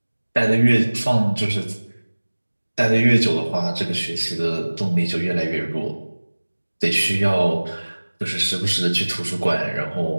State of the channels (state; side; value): inverted; both; correlation -1.00